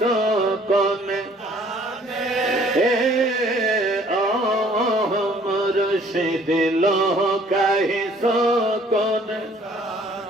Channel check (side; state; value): both; normal; correlation 0.57